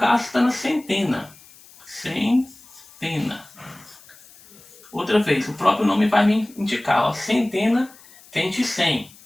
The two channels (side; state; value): left; noise; hiss, 24 dB below the sound